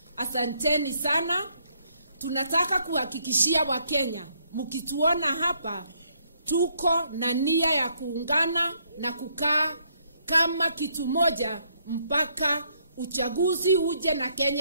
Asanteni sana. Tunataka kuhakikishia Wakenya, mkituona hapa tuko na nia ya kuungana na kukaa kama kitu moja mpaka uchaguzi uje na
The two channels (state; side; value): inverted; both; correlation -0.71